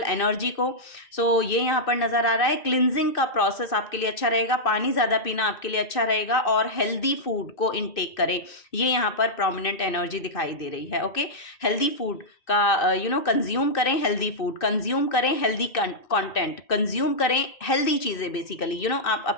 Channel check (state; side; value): late; right; 2.6 ms